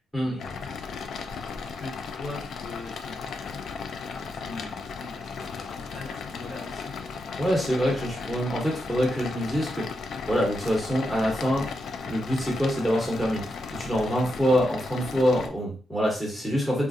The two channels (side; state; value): both; normal; correlation 0.85